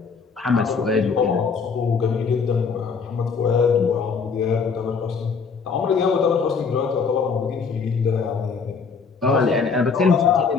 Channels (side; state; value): right; quieter; 5.5 dB